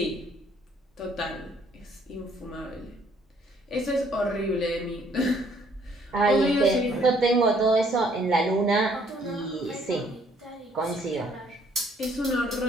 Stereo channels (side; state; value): both; normal; correlation 0.64